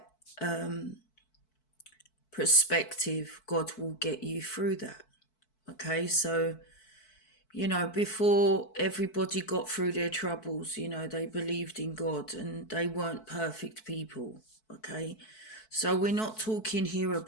perspective, God will get you through that. Okay, so before everybody got through their troubles, they believed in God and they weren't perfect people. Okay. So we're not talking here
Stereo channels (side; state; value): right; late; 4.6 ms